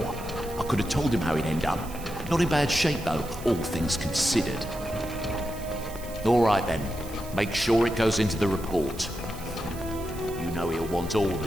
I could have told him how he'd end up. Not in bad shape though, all things considered. Alright then, make sure it goes into the report. You know he'll want all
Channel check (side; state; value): right; noise; hiss, 16 dB below the sound